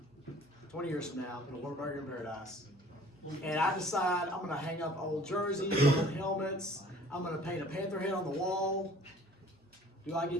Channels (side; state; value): both; normal; correlation 0.51